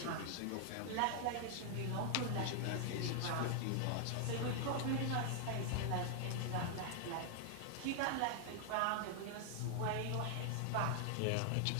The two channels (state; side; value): different; both; correlation 0.00